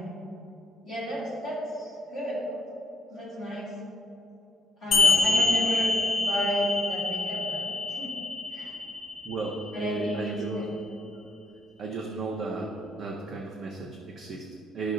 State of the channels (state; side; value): normal; both; correlation 0.72